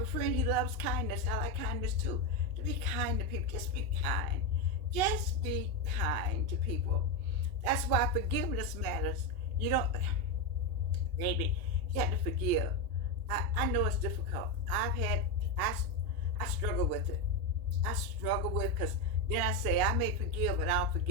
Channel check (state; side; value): late; left; 2.8 ms